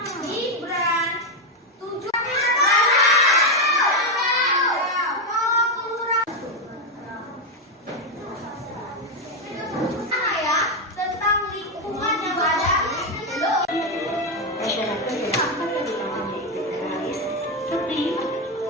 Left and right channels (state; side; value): normal; both; correlation 0.06